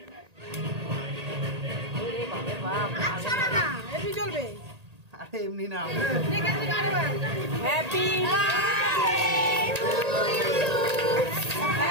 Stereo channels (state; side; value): late; left; 1.8 ms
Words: আরে এমনি না। হ্যাপি